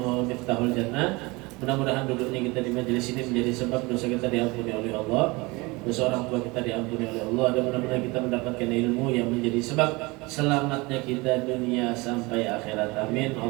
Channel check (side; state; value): left; quieter; 24.5 dB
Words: Miftahul Jannah. Mudah-mudahan duduknya kita di majelis ini menjadi sebab dosa kita diampuni oleh Allah, dosa orang tua kita diampuni oleh Allah, dan mudah-mudahan kita mendapatkan ilmu yang menjadi sebab selamatnya kita dunia sampai akhirat. Amin